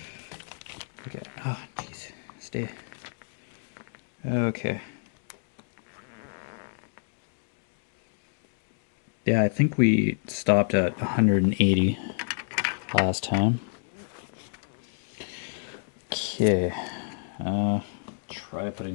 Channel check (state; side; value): silent; right; digital silence